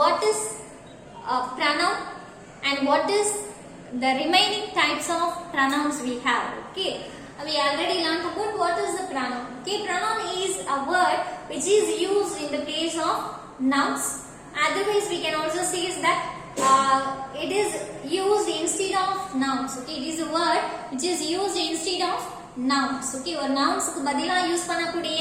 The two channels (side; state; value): both; identical; correlation 1.00